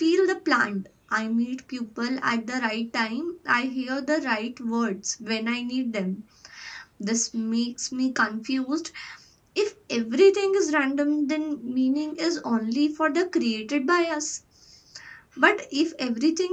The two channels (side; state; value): both; identical; correlation 1.00